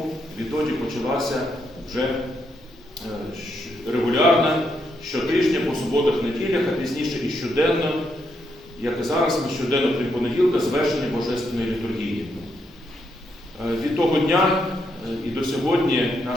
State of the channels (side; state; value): both; normal; correlation 0.78